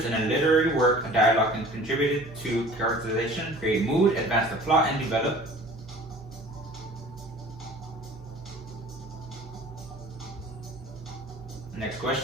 in a literary work, a dialogue can contribute to characterization, create mood, advance the plot, and develop. Next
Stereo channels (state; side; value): noise; right; hum, 18 dB below the sound